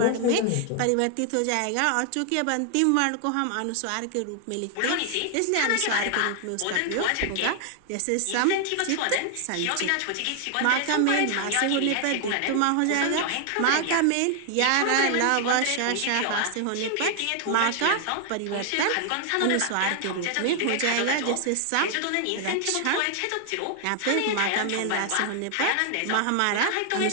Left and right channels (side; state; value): both; different; correlation 0.00